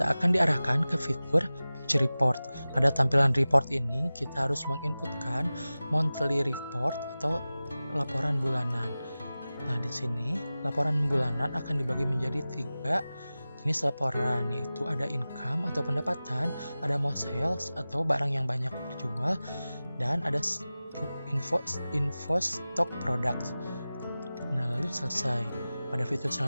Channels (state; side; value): inverted; both; correlation -0.96